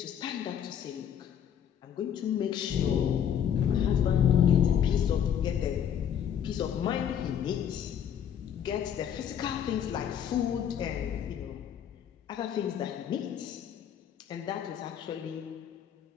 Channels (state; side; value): quieter; right; 9.0 dB